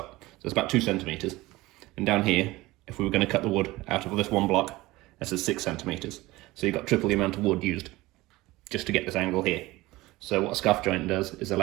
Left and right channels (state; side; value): quieter; left; 19.5 dB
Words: So it's about 2 centimeters. And down here, if we were going to cut the wood out of this one block, this is 6 centimeters. So you've got triple the amount of wood used just to get this angle here. So what a scarf joint does is